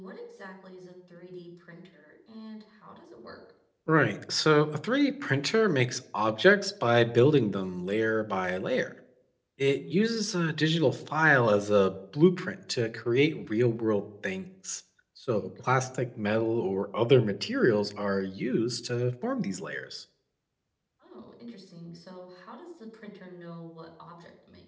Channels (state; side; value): identical; both; correlation 1.00